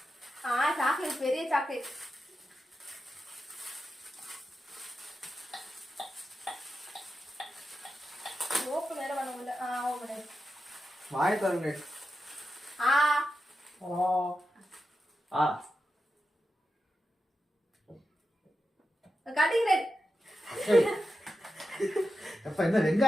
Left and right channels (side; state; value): both; normal; correlation 0.89